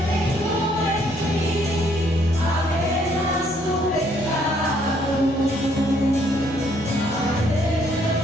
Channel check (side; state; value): both; normal; correlation 0.67